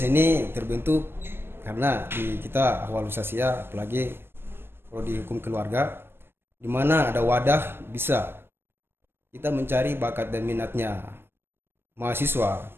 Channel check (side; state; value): left; late; 0.11 ms